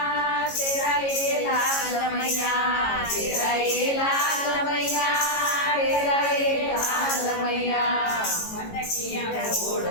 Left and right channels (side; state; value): right; late; 18 ms